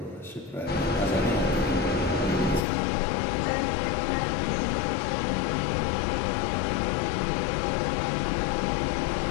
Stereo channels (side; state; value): right; drops out; at 2.6 s